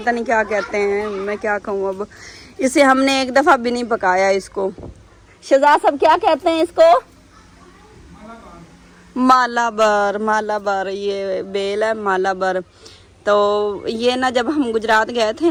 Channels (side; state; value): both; identical; correlation 1.00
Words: नहीं क्या कहते हैं, मैं क्या कहूँ अब, इसे हमने एक दफ़ा भी नहीं पकाया इसको। शहजाद साहब क्या कहते हैं इसको? मालाबर, ये बेल है मालाबर। तो ये ना जब हम गुजरात गए थे